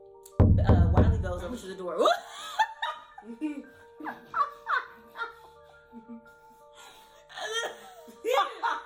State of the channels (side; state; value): both; identical; correlation 1.00